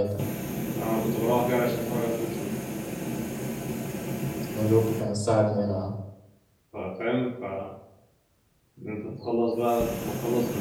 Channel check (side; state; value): both; identical; correlation 1.00